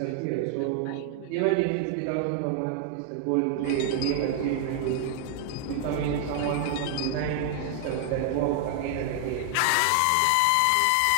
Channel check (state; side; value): different; both; correlation 0.00